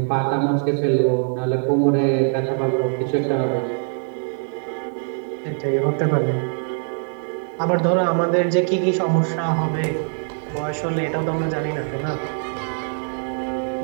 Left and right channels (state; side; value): silent; left; digital silence